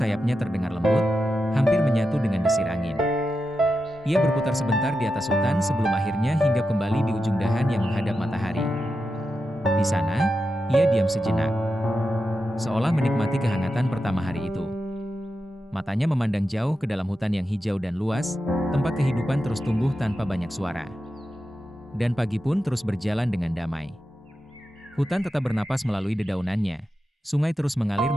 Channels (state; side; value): normal; both; correlation 0.89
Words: terdengar lembut, hampir menyatu dengan desir angin. Ia berputar sebentar di atas hutan sebelum akhirnya hinggap kembali di ujung dahan yang menghadap matahari. Di sana, ia diam sejenak, seolah menikmati kehangatan pertama hari itu. Matanya memandang jauh ke dalam hutan yang hijau dan luas, tempat kehidupan terus tumbuh tanpa banyak suara. Dan pagi pun terus berjalan dengan damai. Hutan tetap bernapas melalui dedaunannya, sungai terus mengalir